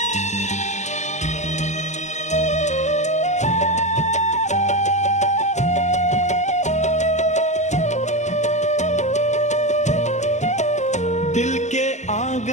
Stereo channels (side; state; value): right; late; 0.34 ms